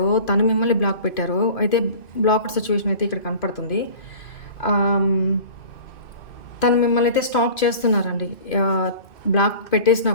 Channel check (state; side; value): late; right; 2.6 ms